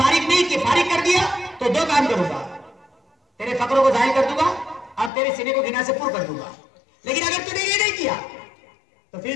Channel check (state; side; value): drops out; right; at 5.1 s